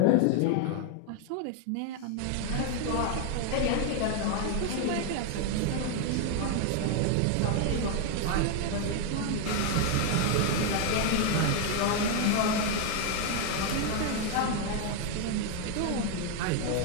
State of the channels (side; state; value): both; different; correlation 0.00